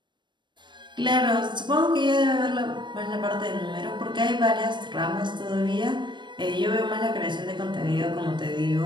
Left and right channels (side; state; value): left; late; 0.22 ms